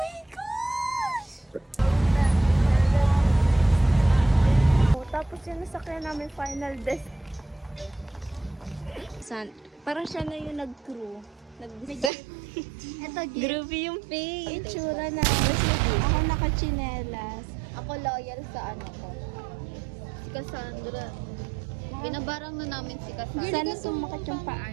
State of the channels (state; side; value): drops out; left; at 12.1 s